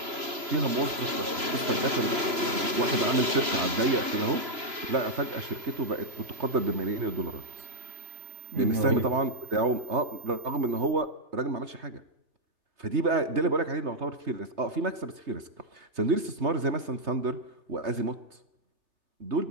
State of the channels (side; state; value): left; late; 3.0 ms